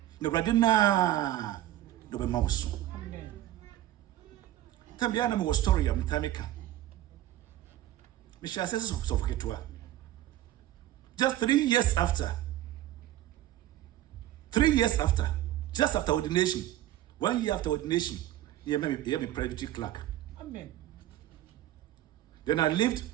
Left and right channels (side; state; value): left; quieter; 13.7 dB